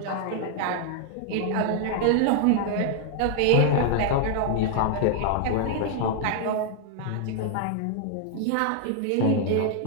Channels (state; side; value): different; both; correlation 0.00